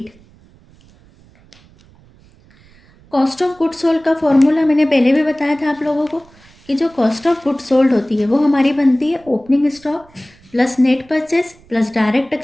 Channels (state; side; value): noise; right; rumble, 28 dB below the sound